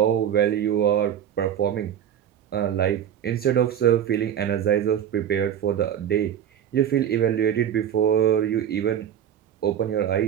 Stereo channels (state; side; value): quieter; left; 9.6 dB